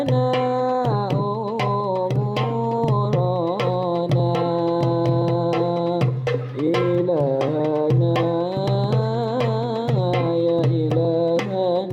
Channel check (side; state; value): both; identical; correlation 1.00